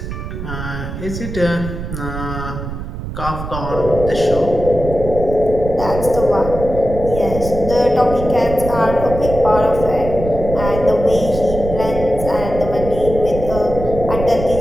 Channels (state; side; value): noise; right; rumble, 7 dB below the sound